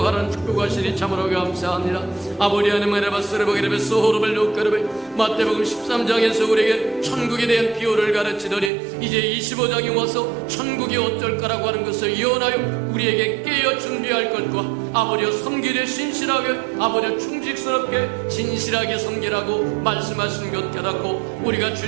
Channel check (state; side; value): drops out; left; at 8.7 s